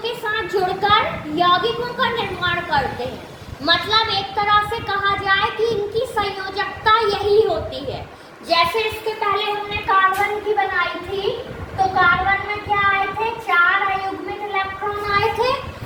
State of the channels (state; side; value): identical; both; correlation 1.00